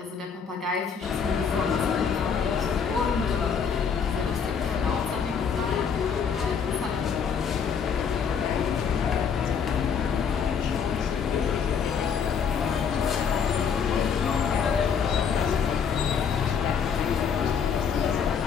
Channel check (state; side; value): quieter; right; 6.7 dB